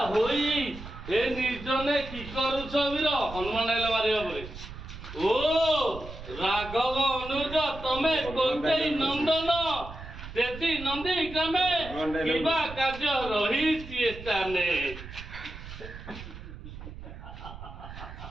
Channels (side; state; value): right; noise; rumble, 12 dB below the sound